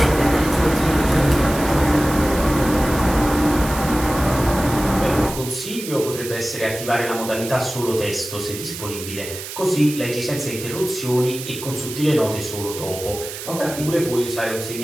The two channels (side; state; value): right; noise; hiss, 10 dB below the sound